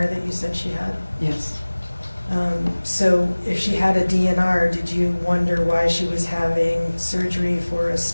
that you said she had? yes. So if she had a DNR, did you wonder why she was having surgery for a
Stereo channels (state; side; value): inverted; both; correlation -1.00